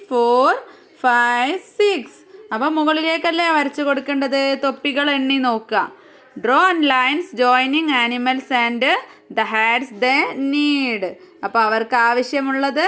4 5 6. അപ്പോൾ മുകളിലേക്കല്ലേ വരച്ചു കൊടുക്കേണ്ടത്. തൊപ്പികൾ എണ്ണി നോക്കുക. Draw lines joining animals and the hats the need. അപ്പോൾ അവർക്ക് ആവശ്യമുള്ളത്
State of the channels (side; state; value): both; identical; correlation 1.00